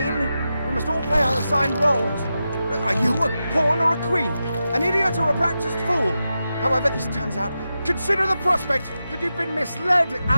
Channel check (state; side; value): inverted; both; correlation -0.90